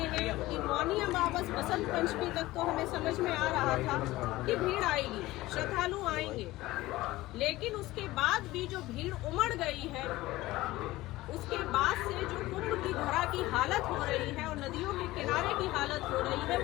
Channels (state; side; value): quieter; right; 18.0 dB